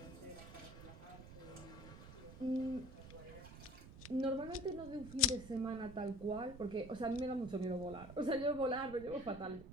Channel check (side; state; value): right; noise; rumble, 14 dB below the sound